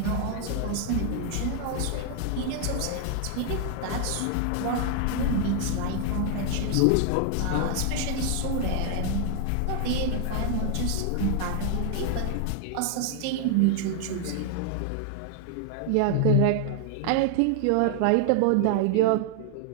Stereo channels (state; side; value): different; both; correlation 0.00